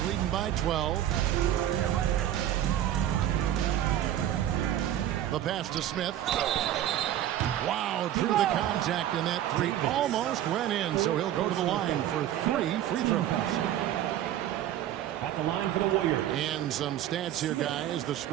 leading by 12. The pass to Smith. Wow, drew the contact, and that 3 almost went in, so he'll go to the line for 3 free throws. at the line for the Warriors. And some stats here, guys. The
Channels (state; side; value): quieter; left; 12.0 dB